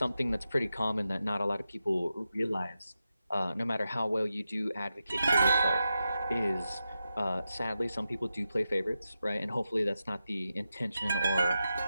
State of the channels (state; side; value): inverted; both; correlation -0.89